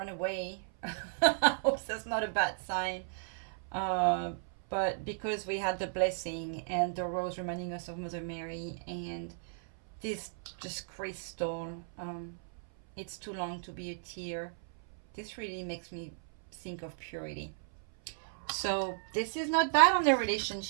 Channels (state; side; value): silent; left; 55 dB below the other